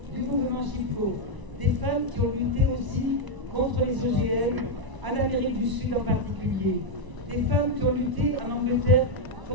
du mouvement Chipko. Des femmes qui ont lutté aussi contre les OGM, en Amérique du Sud en particulier. Des femmes qui ont lutté en Angleterre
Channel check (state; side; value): late; left; 1.0 ms